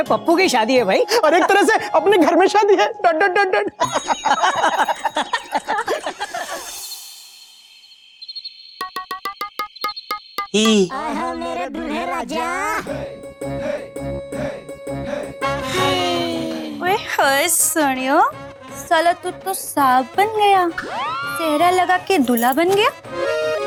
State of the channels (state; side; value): identical; both; correlation 1.00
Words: पप्पू की शादी है भाई। और एक तरह से अपने घर में शादी है डॉट डॉट डॉट डॉट। ही ओए होए सोनियो, साला तू तो सांप बन गया, सेहरा लगा के दूल्हा बन गया।